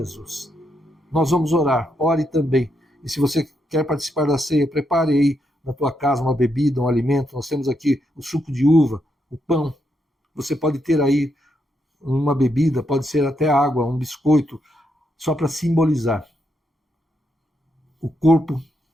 Nós vamos orar, ore também. E se você quer participar da ceia, prepare aí na tua casa uma bebida, um alimento. Nós temos aqui o suco de uva, o pão. Você pode ter aí uma bebida, pode ser até água, um biscoito, só para simbolizar o corpo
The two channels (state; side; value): normal; both; correlation 0.80